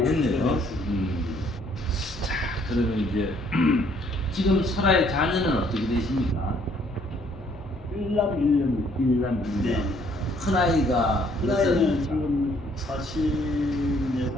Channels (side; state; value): both; normal; correlation 0.64